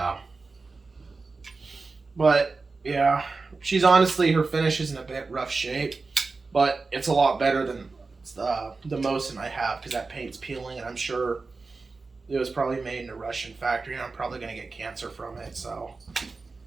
But, yeah. She's honestly, her finish is in a bit rough shape, but it's a lot better than the Mosin I have because that paint's peeling, and I'm sure it was probably made in a Russian factory, and I'm probably going to get cancer from it, so.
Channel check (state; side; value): quieter; left; 4.0 dB